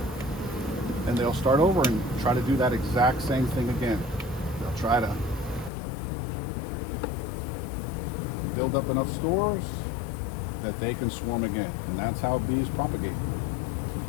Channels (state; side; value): drops out; right; at 5.7 s